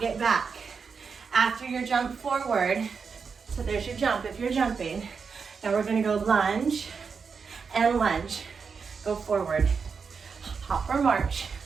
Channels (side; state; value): left; quieter; 5.6 dB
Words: it back. After your jump forward, so there's your jump if you're jumping. Now we're gonna go lunge and lunge. Go forward. Hop or march.